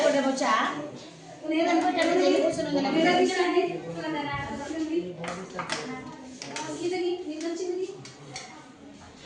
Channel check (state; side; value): identical; both; correlation 1.00